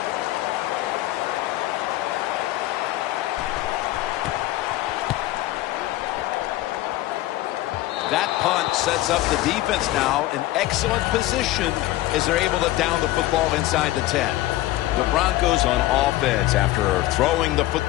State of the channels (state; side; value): quieter; right; 16.3 dB